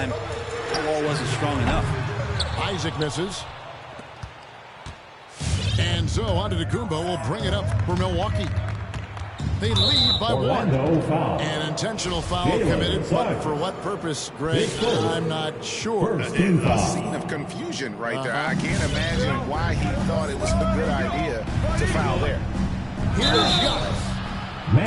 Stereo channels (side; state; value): both; identical; correlation 1.00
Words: the wall wasn't strong enough. Isaac misses. And so Antetokounmpo will bring it up for Milwaukee. They lead by 1. An intentional foul committed, but for what purpose, Greg? I'm not sure. A scene of confusion right there. I can't imagine why he thought it was a good idea to foul there. Here's Giannis. I